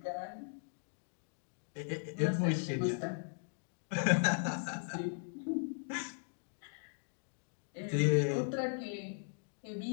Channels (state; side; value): silent; right; 52 dB below the other